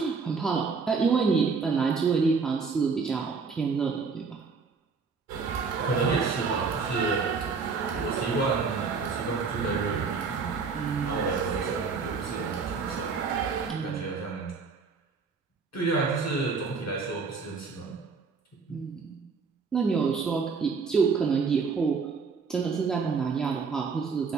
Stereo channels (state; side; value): quieter; left; 5.1 dB